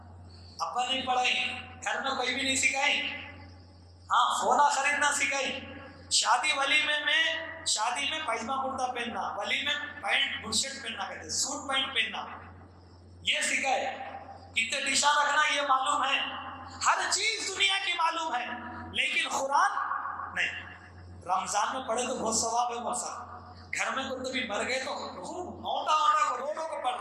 ابا نہیں پڑھائی، گھر میں کوئی بھی نہیں سکھائی، ہاں فونا خریدنا سکھائی، شادی ولیمے میں، شادی میں پائجامہ کرتا پہننا، ولیمے میں پینٹ بل شرٹ پہننا، کہتے سوٹ پینٹ پہننا، یہ سکھائے، کتنے ڈشاں رکھنا یہ معلوم ہے، ہر چیز دنیا کی معلوم ہے، لیکن قرآن نہیں۔ رمضان میں پڑھے تو بہت ثواب ہے موسا، گھر میں کوئی تو بھی مر گئے تو موٹا کو روڈوں کو پڑھ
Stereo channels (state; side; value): identical; both; correlation 1.00